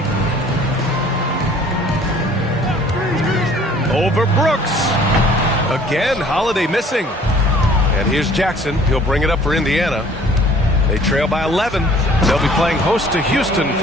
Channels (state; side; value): normal; both; correlation 0.54